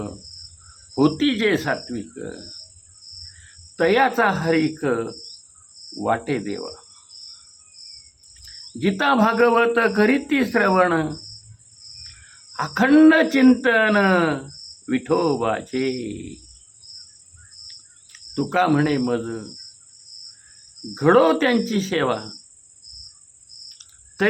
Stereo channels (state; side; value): identical; both; correlation 1.00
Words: होती जे सात्विक, तयाचा हरिक वाटे देवा, गीता भागवत करीती श्रवण, अखंड चिंतन विठोबाचे, तुका म्हणे मज घडो त्यांची सेवा,